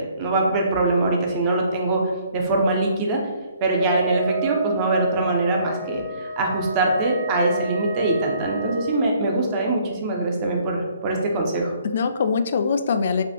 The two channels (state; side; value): inverted; both; correlation -0.61